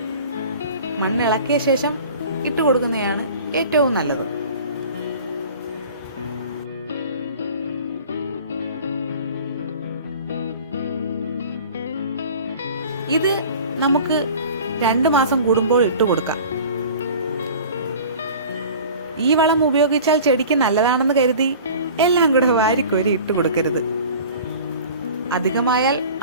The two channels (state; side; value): inverted; both; correlation -0.42